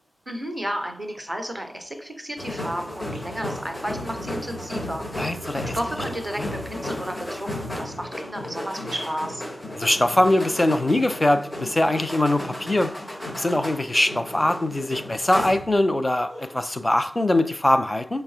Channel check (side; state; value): both; normal; correlation 0.95